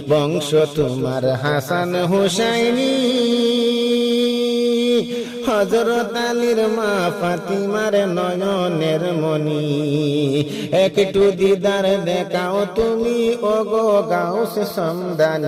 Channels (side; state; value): both; identical; correlation 1.00